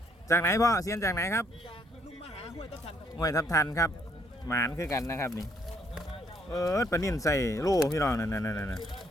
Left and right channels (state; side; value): normal; both; correlation 0.68